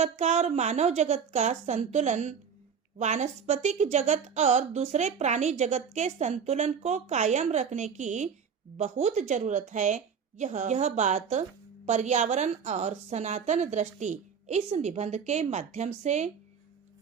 का और मानव जगत का संतुलन, वानस्पतिक जगत और दूसरे प्राणी जगत के संतुलन को कायम रखने की बहुत जरूरत है। यह बात पर्यावरण और सनातन दृष्टि इस निबंध के माध्यम से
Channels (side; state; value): left; quieter; 6.8 dB